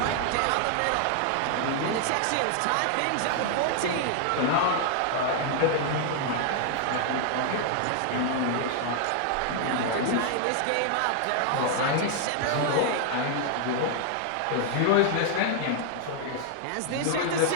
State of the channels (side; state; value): both; different; correlation 0.00